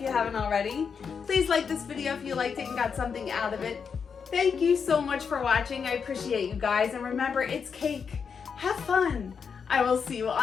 you haven't already. Please like this video if you liked it and got something out of it. Thank you so much for watching. I appreciate you guys. And remember, it's cake. Have fun. I will see you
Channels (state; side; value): quieter; right; 6.2 dB